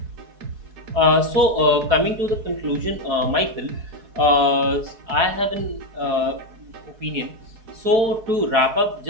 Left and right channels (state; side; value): late; left; 4.7 ms